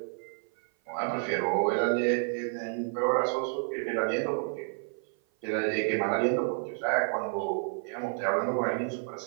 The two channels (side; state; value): left; silent; 55 dB below the other